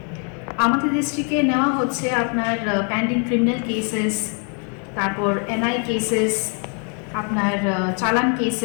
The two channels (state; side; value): quieter; right; 39.8 dB